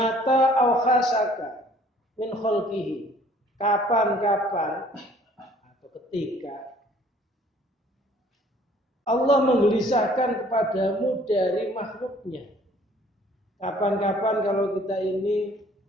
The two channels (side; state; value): both; normal; correlation 0.57